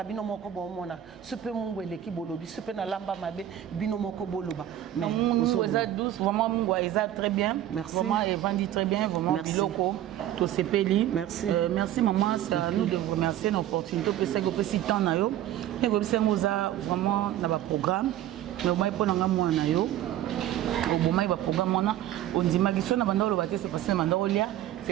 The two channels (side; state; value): left; quieter; 12.2 dB